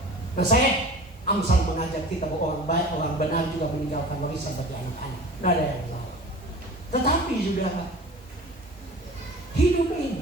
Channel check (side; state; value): both; normal; correlation 0.39